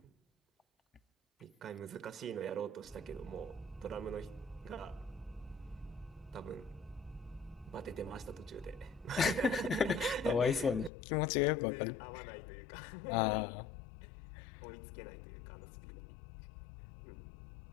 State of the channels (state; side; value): drops out; right; at 10.9 s